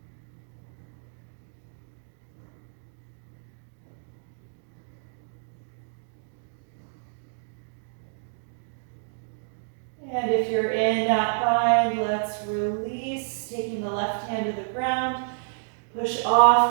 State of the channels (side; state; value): left; silent; digital silence